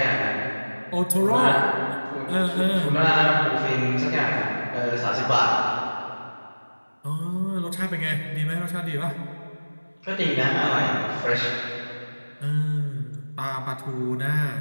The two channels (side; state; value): both; inverted; correlation -1.00